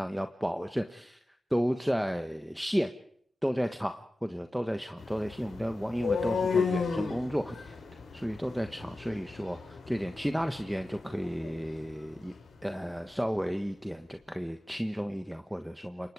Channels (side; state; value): both; normal; correlation 0.95